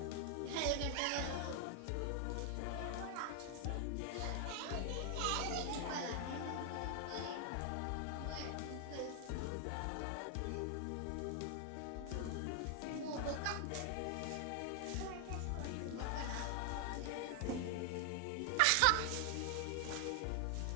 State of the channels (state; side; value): different; both; correlation 0.00